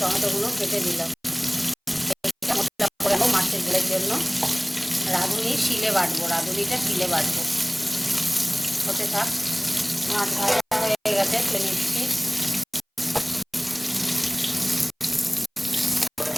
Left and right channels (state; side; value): identical; both; correlation 1.00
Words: কেটে দিলাম। মশলা করে নেবো মাছের ঝোলের জন্য। রাঁধুনি শিলে বাটবো, রাঁধুনিটা শিলে বাটবো। হতে থাক। মাছ ভাজা হয়ে গেছে, তুলে নিচ্ছি।